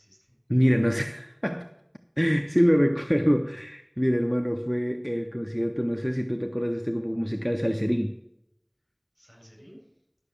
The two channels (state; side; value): identical; both; correlation 1.00